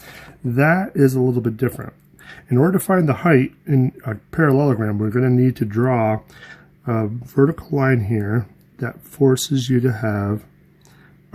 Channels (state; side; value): identical; both; correlation 1.00